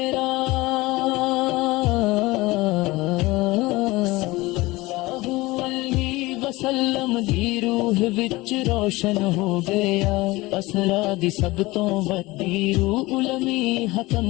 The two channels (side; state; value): right; quieter; 20.8 dB